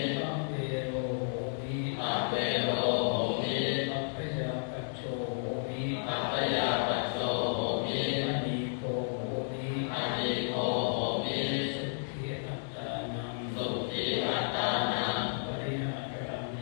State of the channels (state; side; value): silent; right; digital silence